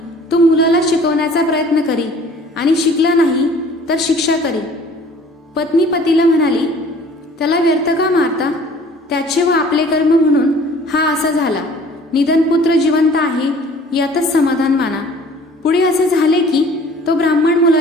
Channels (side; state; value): both; normal; correlation 0.51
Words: तो मुलाला शिकवण्याचा प्रयत्न करी आणि शिकला नाही तर शिक्षा करी. पत्नी पतीला म्हणाली, त्याला व्यर्थ का मारता? त्याचे व आपले कर्म म्हणून हा असा झाला. निधन पुत्र जिवंत आहे यातच समाधान माना. पुढे असे झाले की तो ब्राह्मण